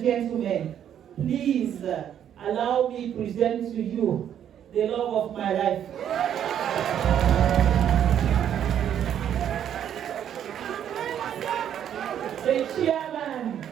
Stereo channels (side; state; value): left; quieter; 9.7 dB